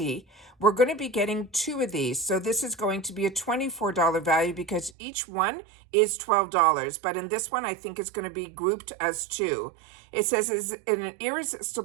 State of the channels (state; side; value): drops out; left; at 4.9 s